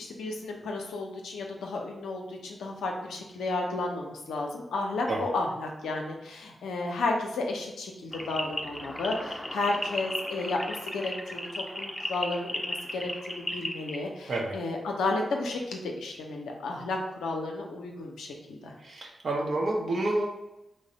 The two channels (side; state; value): both; normal; correlation 0.82